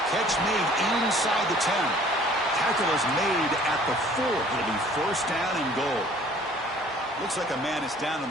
Catch made inside the 10. Tackle is made at the 4. It'll be 1st down and goal. Looks like a man is down on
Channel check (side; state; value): both; normal; correlation 0.54